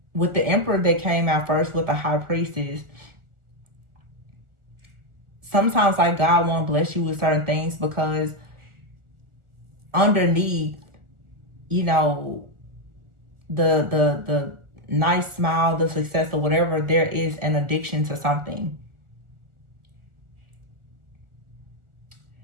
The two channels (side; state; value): left; late; 1.4 ms